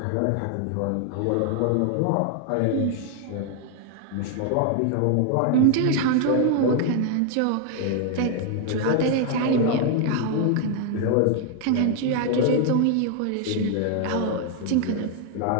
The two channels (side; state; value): both; different; correlation 0.00